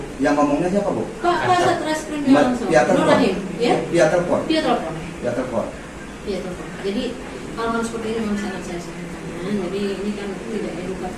Yang ngomongnya siapa, Bu? Pak Kasat Reskrimnya langsung. Via Nur telepon. Rahim, ya? Via telepon. Via telepon. Via telepon. Via telepon. Jadi hal-hal seperti ini memang sangat saya sayangkan. Jadi ini kan tidak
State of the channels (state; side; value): identical; both; correlation 1.00